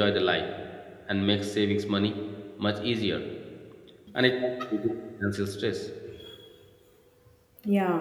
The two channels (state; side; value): identical; both; correlation 1.00